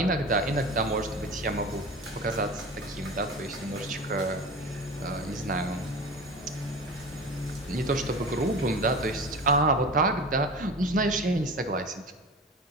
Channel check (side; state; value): both; normal; correlation 0.33